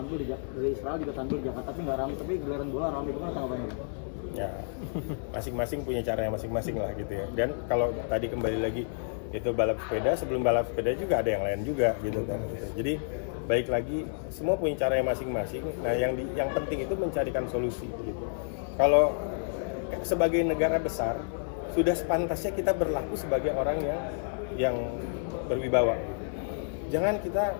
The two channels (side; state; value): right; silent; digital silence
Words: dari Israel juga tampil di Jakarta, tapi nggak ramai, tapi gelaran bola ramai. Gimana tanggapannya? Ya, masing-masing punya caranya masing-masing lah gitu ya. Dan kalau tadi kembali lagi itu balap sepeda, sebelum balap sepeda juga ada yang lain juga gitu kan. Jadi baik lagi semua punya caranya masing-masing. Nah, yang penting itu mencarikan solusi gitu. Kalau sebagai negara besar sudah sepantasnya kita berlaku sebagai orang yang berwibawa. Jangan kita